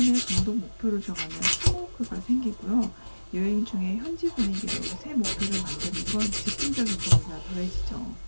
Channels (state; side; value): inverted; both; correlation -1.00